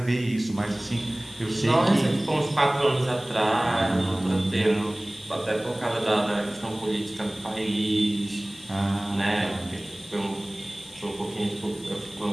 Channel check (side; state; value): left; noise; hiss, 20 dB below the sound